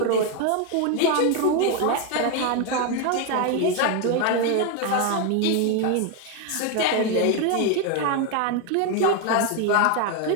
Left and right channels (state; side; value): different; both; correlation 0.01